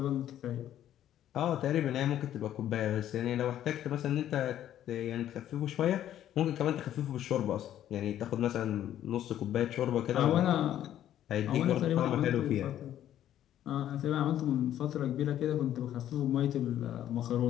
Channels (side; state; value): right; quieter; 11.5 dB